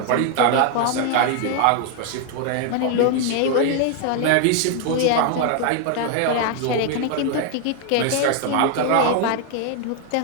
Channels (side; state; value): both; different; correlation 0.00